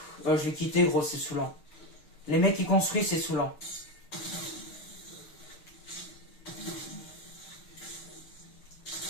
Je vais quitter, gros, c'est saoulant. Les mecs qui construisent, c'est saoulant.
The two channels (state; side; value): late; right; 6.6 ms